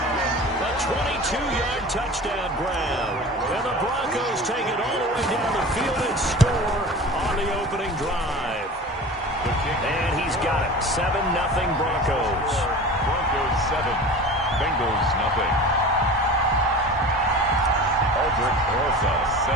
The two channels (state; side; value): normal; both; correlation 0.36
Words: A 22-yard touchdown grab. And the Broncos take it all the way down the field and score on the opening drive. And he's got it. 7-0 Broncos. Broncos 7. Bengals nothing. Aldrich Rosas